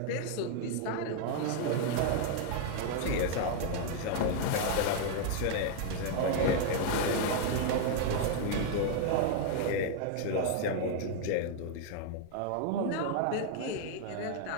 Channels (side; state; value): both; different; correlation 0.00